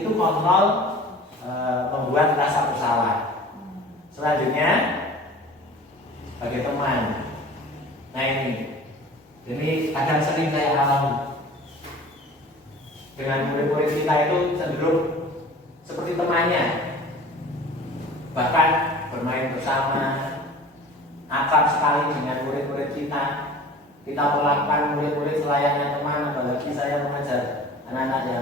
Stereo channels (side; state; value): both; normal; correlation 0.43